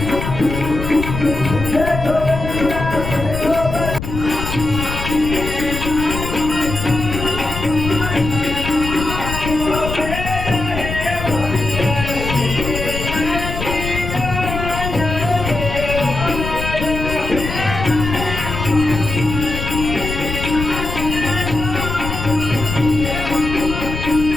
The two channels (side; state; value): left; noise; rumble, 5 dB below the sound